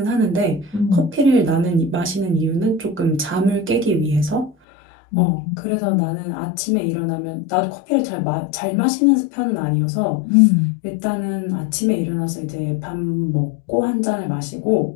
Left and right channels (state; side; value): drops out; right; at 4.5 s